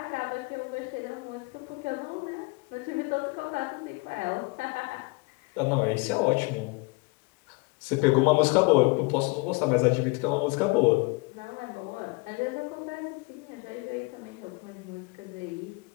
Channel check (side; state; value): right; quieter; 27.4 dB